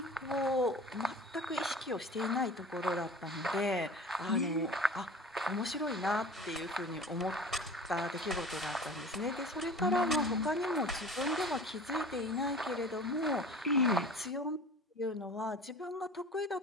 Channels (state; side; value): normal; both; correlation 0.40